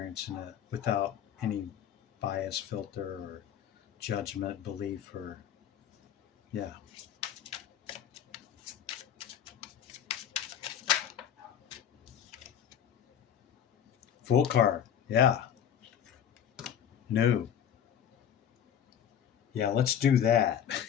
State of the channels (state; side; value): quieter; right; 9.2 dB